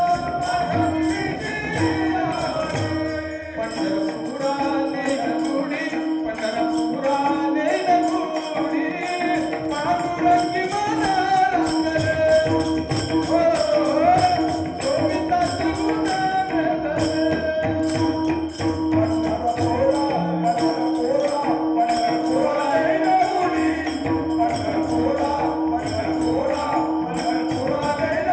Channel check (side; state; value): both; identical; correlation 1.00